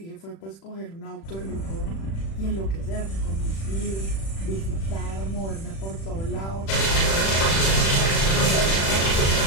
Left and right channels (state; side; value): late; right; 36 ms